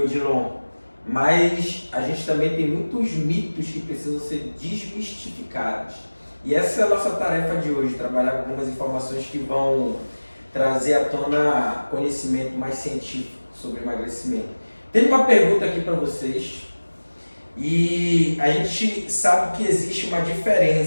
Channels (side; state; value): both; inverted; correlation -1.00